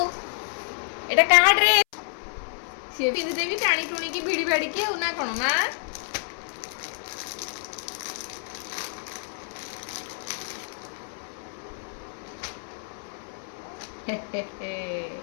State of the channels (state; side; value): silent; right; 58 dB below the other